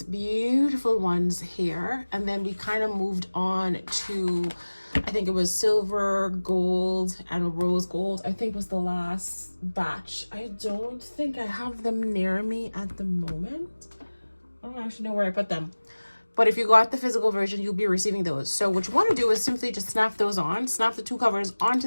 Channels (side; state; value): both; inverted; correlation -1.00